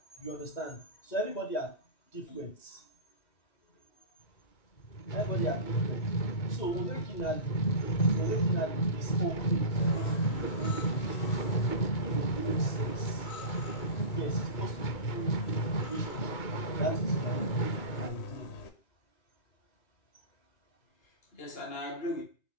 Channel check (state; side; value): late; right; 2.2 ms